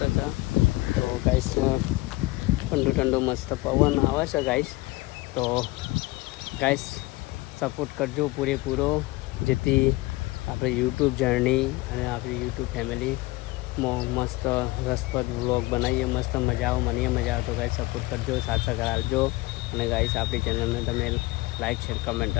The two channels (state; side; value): quieter; right; 20.9 dB